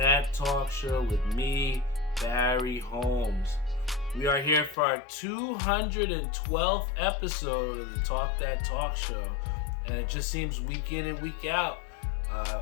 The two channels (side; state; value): right; drops out; at 4.8 s